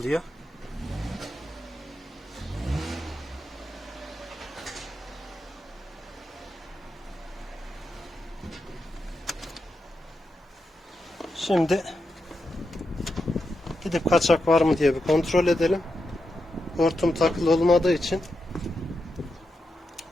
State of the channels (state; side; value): normal; both; correlation 0.87